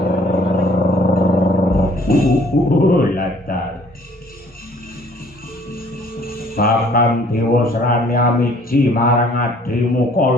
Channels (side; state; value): both; normal; correlation 0.58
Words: latar Pakan Dewa Serani amiji marang adrimu